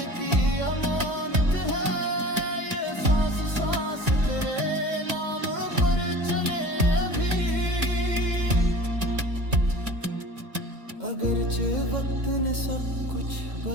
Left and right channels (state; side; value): late; left; 2.1 ms